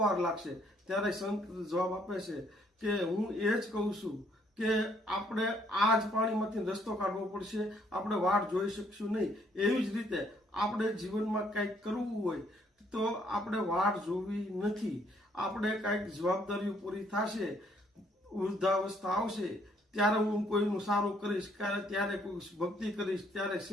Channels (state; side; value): normal; both; correlation 0.67